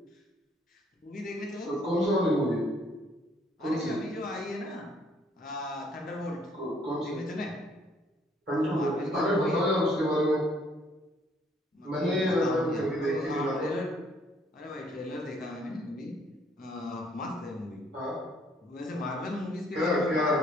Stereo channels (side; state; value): both; normal; correlation 0.64